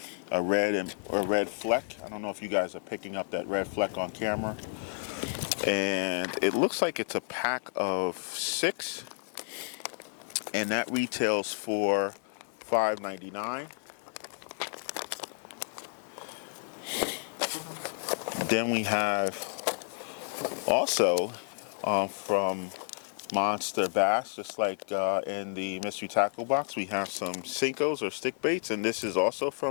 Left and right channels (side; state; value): right; silent; 57 dB below the other